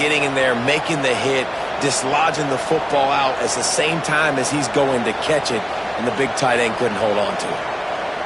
in there, making the hit, dislodging the football out at the same time as he's going to catch it, and the big tight end couldn't hold on to it.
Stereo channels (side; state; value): both; identical; correlation 1.00